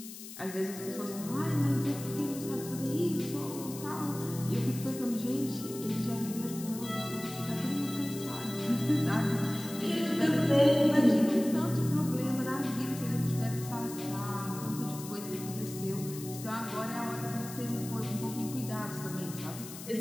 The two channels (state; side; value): noise; left; hiss, 12 dB below the sound